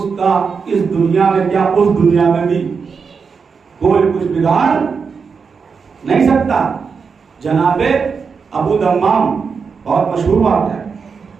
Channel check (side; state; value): left; quieter; 5.6 dB